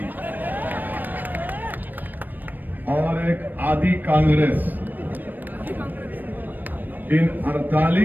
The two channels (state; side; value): late; left; 0.089 ms